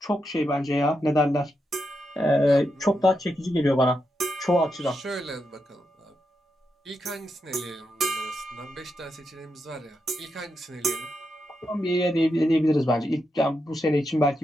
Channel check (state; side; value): normal; both; correlation 0.84